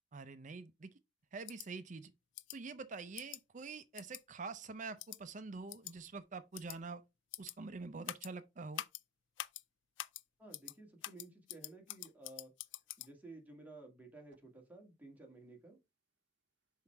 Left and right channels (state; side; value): normal; both; correlation 0.20